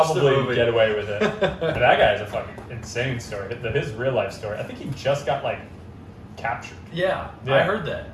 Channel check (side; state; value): both; identical; correlation 1.00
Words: get away with it. And that guy is a fucking insane story. His real life story, I think he just got like, captured. Yeah. I heard that.